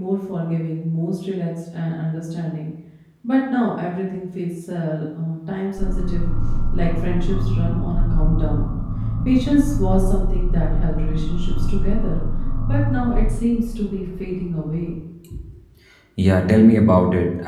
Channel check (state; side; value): identical; both; correlation 1.00